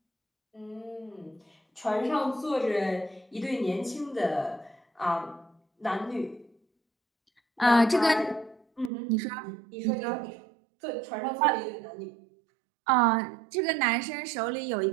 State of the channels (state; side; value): drops out; left; at 8.9 s